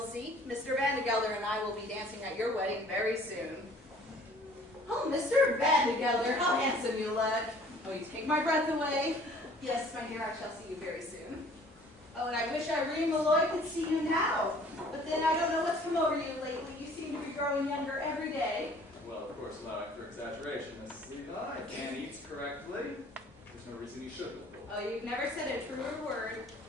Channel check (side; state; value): both; normal; correlation 0.53